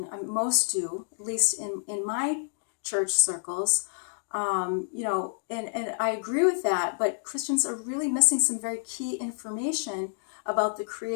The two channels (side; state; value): right; silent; digital silence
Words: Most do, at least in my church circles. And I agree with that, but Christians are really missing some very key information about the